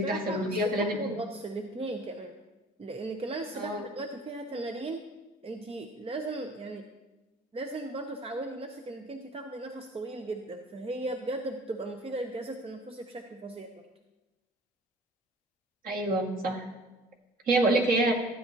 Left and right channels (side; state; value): both; normal; correlation 0.49